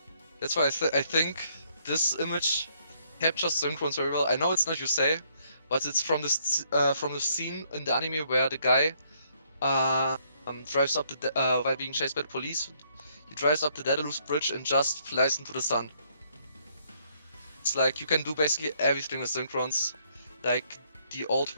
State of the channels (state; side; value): inverted; both; correlation -0.69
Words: That's why I think this image captures Synchrons very well. I know it's not Yusei, but it's from the scene in the anime where the guy drives up while being chased by the police. He drives up the Daedalus bridge and just flies into the sun. It's like you can do basically everything with Synchrons, like the old